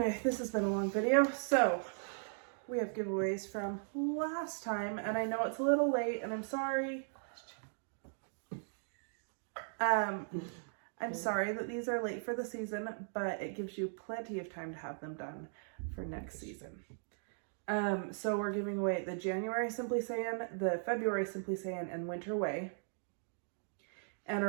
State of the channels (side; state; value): left; silent; digital silence